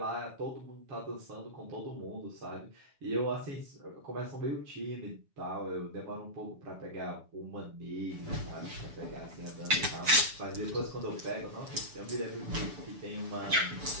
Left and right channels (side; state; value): left; late; 6.9 ms